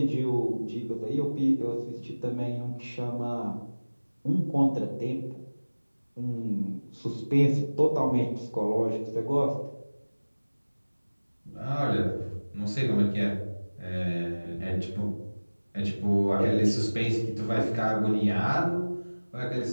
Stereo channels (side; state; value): both; inverted; correlation -1.00